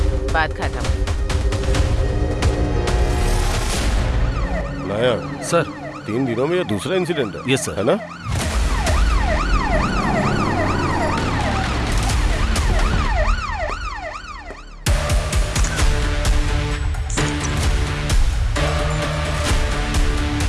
बात खत्म। नायक सर 3 दिनों में ये दूसरा इंसिडेंट है। Yes sir. है ना?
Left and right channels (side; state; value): both; identical; correlation 1.00